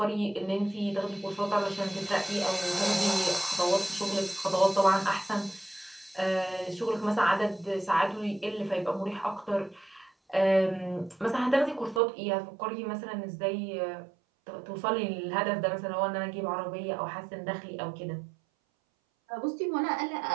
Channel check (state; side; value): drops out; left; at 12.0 s